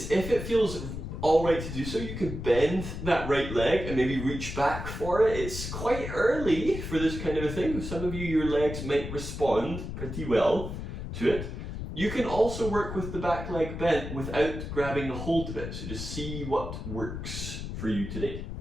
if it feels alright to do so, you can bend that right leg and maybe reach back for it. It's quite early for this kind of a thing. Some of you, your legs might respond pretty well to it. You can also work with the back leg bent without grabbing a hold of it. So just see what works for you today.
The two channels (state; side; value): noise; left; rumble, 7 dB below the sound